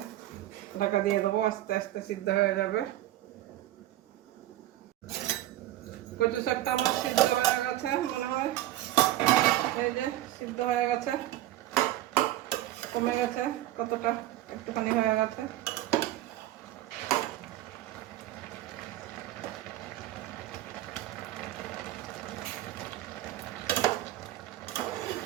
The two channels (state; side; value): quieter; left; 14.5 dB